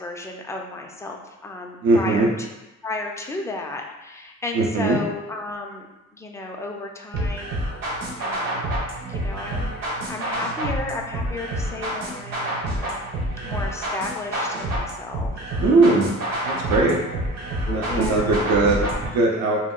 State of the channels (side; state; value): both; normal; correlation 0.42